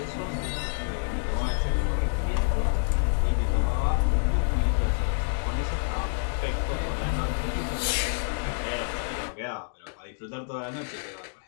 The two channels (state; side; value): silent; right; 60 dB below the other